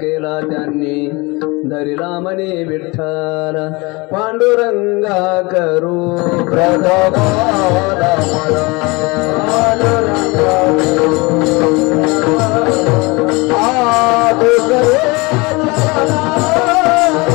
केला त्यांनी धरिला मने विठ्ठल पांडुरंगा करू प्रथमाला मला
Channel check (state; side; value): quieter; right; 25.6 dB